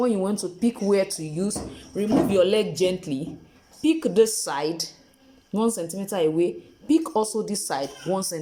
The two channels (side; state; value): both; identical; correlation 1.00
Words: you want to pick where to use, remove your leg gently, pick this side 1 centimeter away, pick also this side 1